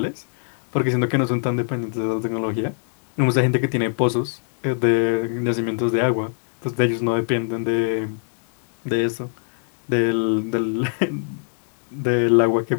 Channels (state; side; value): silent; right; digital silence